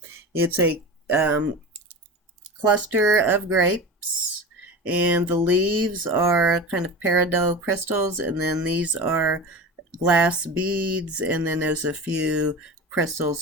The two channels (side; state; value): both; normal; correlation 0.30